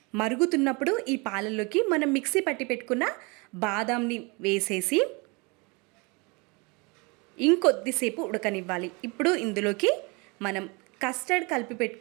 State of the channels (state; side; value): quieter; left; 28.6 dB